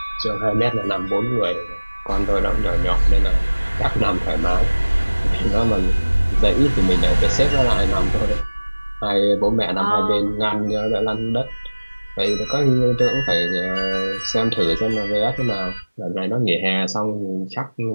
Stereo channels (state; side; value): inverted; both; correlation -1.00